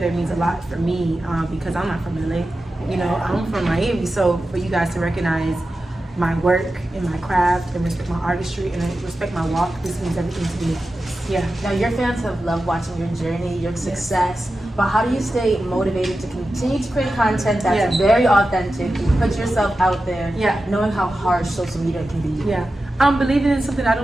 means a lot for me because I'm not from LA. You know, I'm from Miami. So for you guys to recognize my work and my craft and respect my artistry and respect my walk, this means everything to me. Yeah. Now, your fans have loved watching your journey, your success, but how do you stay motivated to continue to create content that's Yes. very authentic, put yourself out there, Yeah. knowing how harsh social media can be? Yeah, I'm believing in something I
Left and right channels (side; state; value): both; normal; correlation 0.92